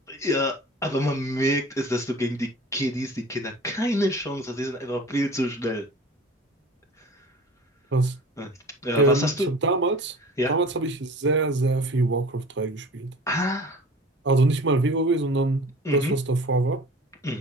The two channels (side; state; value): both; normal; correlation 0.41